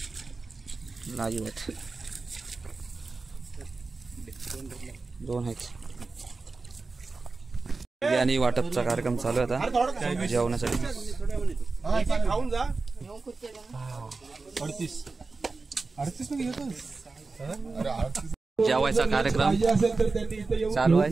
लाईव्ह आहेत. 2 आहेत. बिर्याणी वाटपचा कार्यक्रम चालू आहे आता जेवणासाठी. खाऊन जा. 38 मध्ये घेतो. जेवायचा कार्यक्रम पाहिजे असेल तर त्यांनी इथे येऊन चालू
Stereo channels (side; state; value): left; quieter; 3.9 dB